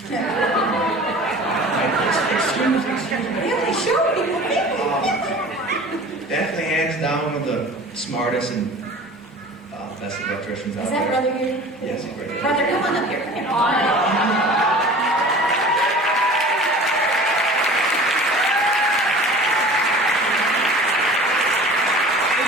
Excuse me. Yeah, they show people. Definitely hands down one of the smartest and best electricians out Is there. that brother here? Yes, he's right there. Brother, come on up here. Come here. Would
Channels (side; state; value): both; normal; correlation 0.42